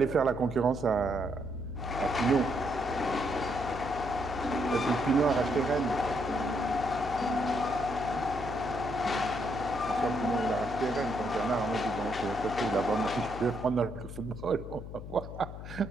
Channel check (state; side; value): noise; left; hum, 10 dB below the sound